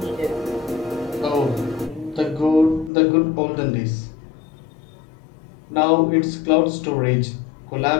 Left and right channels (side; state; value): right; drops out; at 2.9 s